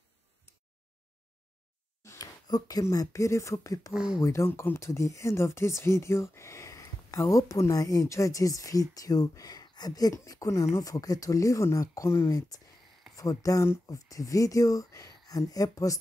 Okay, my beautiful people, we don't come to the end of this video. I hope you enjoy this video. I beg make una not forget to leave on a comment for down of the video and help us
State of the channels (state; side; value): normal; both; correlation 0.92